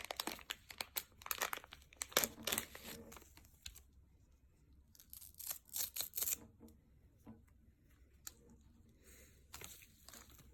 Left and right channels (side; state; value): both; identical; correlation 1.00